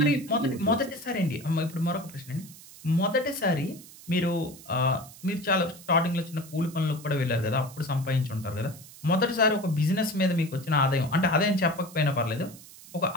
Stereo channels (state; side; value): noise; right; hiss, 19 dB below the sound